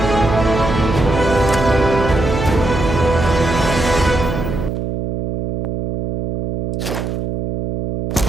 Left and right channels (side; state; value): right; noise; hum, 3 dB below the sound